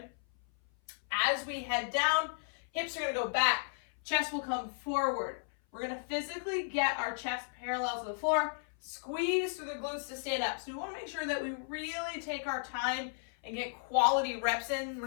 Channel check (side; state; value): right; silent; 55 dB below the other